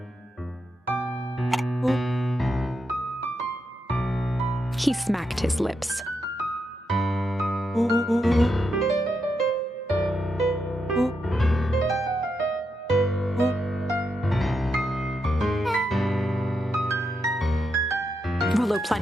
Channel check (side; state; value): both; normal; correlation 0.83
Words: He smacked his lips. Rollo